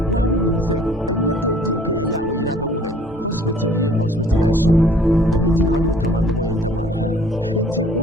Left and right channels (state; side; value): normal; both; correlation 0.55